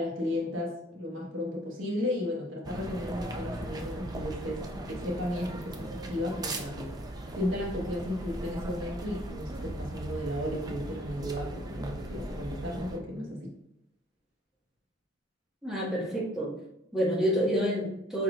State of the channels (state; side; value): normal; both; correlation 0.60